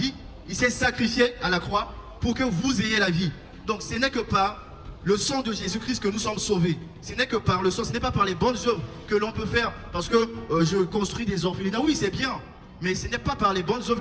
il s'est sacrifié à la croix pour que vous ayez la vie. Donc ce n'est que par le sang de Jésus-Christ que nous sommes sauvés. Ce n'est que par le sang, ce n'est pas par les bonnes œuvres que l'on peut faire. Parce que je construis des orphelinats, oui c'est bien. Mais ce n'est pas par les bonnes œuvres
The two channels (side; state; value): both; identical; correlation 1.00